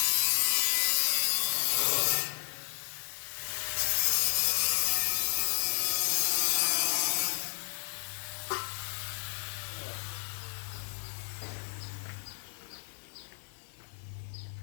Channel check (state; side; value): silent; right; 56 dB below the other